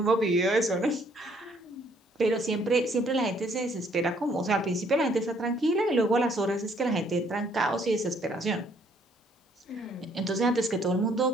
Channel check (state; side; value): normal; both; correlation 0.65